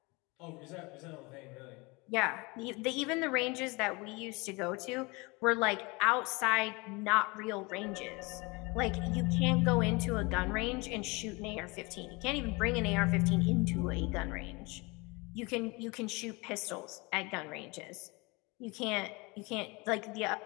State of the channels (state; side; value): quieter; right; 26.2 dB